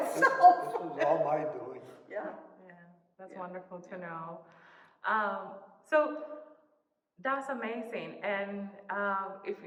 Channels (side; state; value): both; identical; correlation 1.00